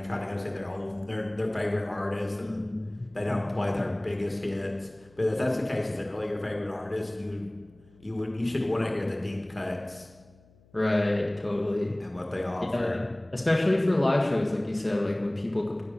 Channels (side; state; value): left; noise; hum, 28 dB below the sound